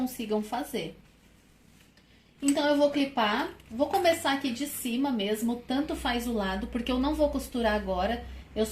fazer. Então, eu vou clipar, vou começar aqui de cima mesmo, tanto faz o lado, porque eu não vou costurar agora, eu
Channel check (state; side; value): identical; both; correlation 1.00